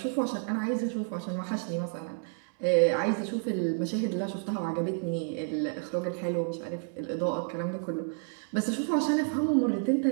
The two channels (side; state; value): left; silent; 58 dB below the other